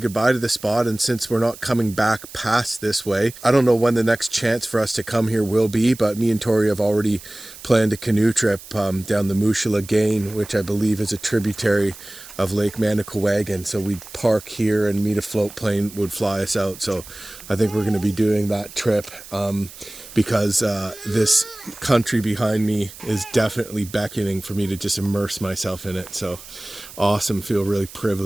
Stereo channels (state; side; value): noise; right; hiss, 17 dB below the sound